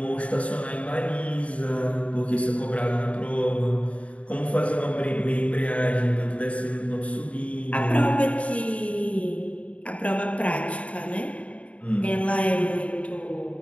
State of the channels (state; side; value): late; right; 0.065 ms